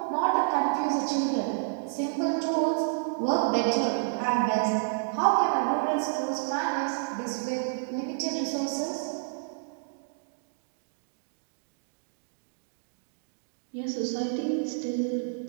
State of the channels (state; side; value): silent; left; digital silence